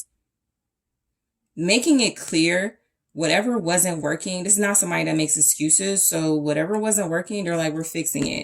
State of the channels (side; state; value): both; identical; correlation 1.00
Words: making it clear whatever wasn't working. This is not somebody that makes excuses. So whatever wasn't working, they're like, we're fixing